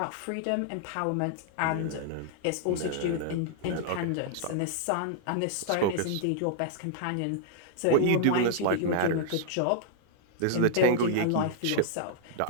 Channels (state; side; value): different; both; correlation -0.01